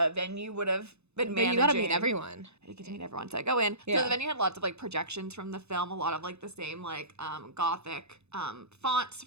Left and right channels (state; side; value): late; left; 0.80 ms